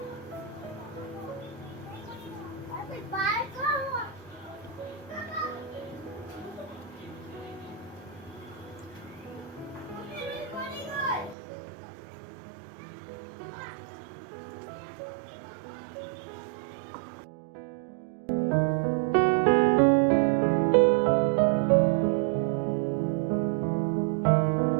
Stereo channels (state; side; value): drops out; left; at 11.4 s